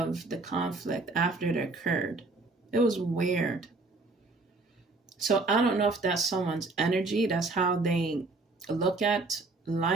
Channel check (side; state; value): left; quieter; 3.5 dB